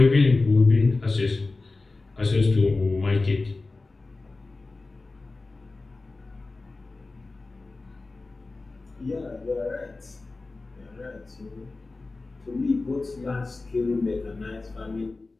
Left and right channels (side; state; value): right; quieter; 3.5 dB